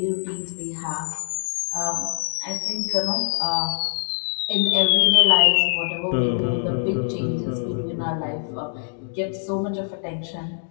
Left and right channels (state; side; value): silent; right; digital silence